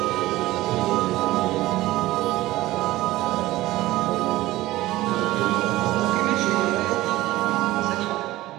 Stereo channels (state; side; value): quieter; left; 17.1 dB